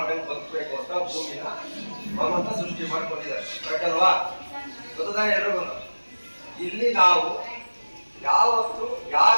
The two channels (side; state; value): both; inverted; correlation -1.00